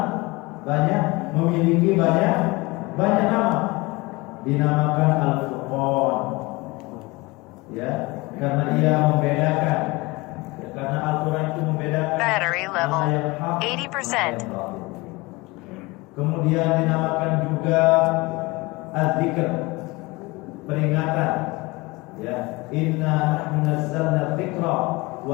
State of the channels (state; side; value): quieter; right; 23.5 dB